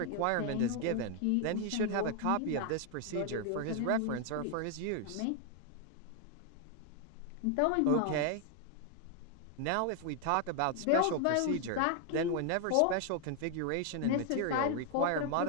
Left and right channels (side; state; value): both; different; correlation 0.00